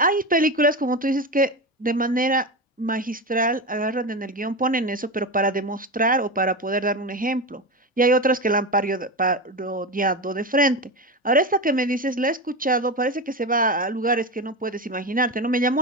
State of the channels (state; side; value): normal; both; correlation 0.20